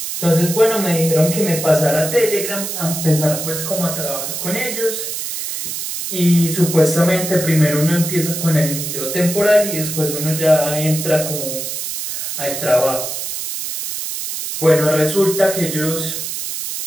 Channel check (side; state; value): right; noise; hiss, 5 dB below the sound